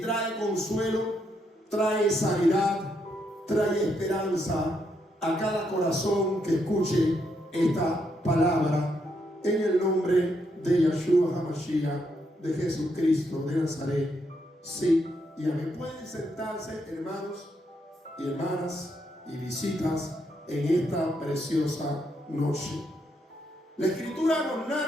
consuelo, trae sanidad, trae esperanza a cada corazón que escuche esta palabra, en el nombre de Yeshua HaMashiach, de Jesucristo de Nazaret. Sí y amén. Pueden sentarse, hermanos y hermanas y visitas, en esta preciosa noche. La escritura nos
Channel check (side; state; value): both; normal; correlation 0.78